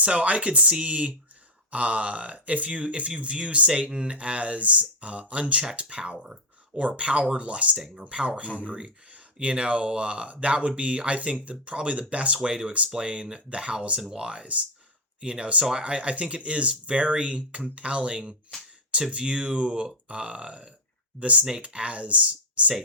I could see, if you view Satan as unchecked power, or power lusting, or power hungry, that would be, I think, probably the best way to explain the hows and whys. So I think it is very compelling to view the snake as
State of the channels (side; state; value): both; normal; correlation 0.02